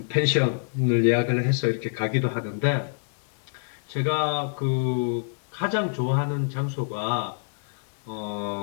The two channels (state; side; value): silent; right; digital silence